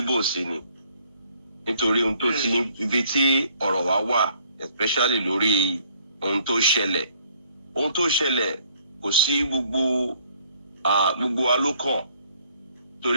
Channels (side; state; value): both; inverted; correlation -0.63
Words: sí ni nítorí ohun tó ti ibi tí ọ̀rọ̀ wa wà especially lórí ohun tó ṣẹlẹ̀ kò sí gbogbo wa ló kàn